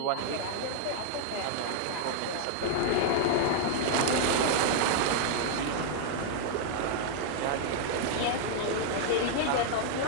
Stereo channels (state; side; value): different; both; correlation 0.00